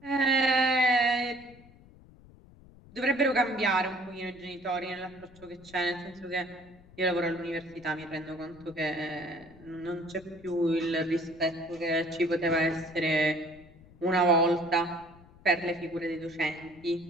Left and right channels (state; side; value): noise; left; rumble, 23 dB below the sound